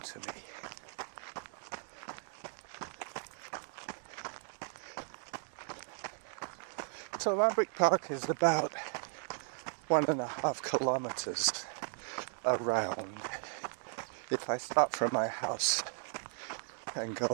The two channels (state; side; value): silent; left; 53 dB below the other